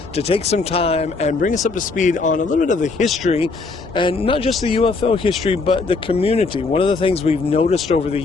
to take some time and bring us up to speed on a little bit of the history, and not just the UFO history, but the community. One of the things we've noticed over the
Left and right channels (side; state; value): right; quieter; 4.0 dB